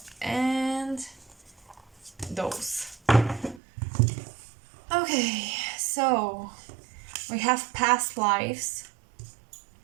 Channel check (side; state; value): left; drops out; at 3.6 s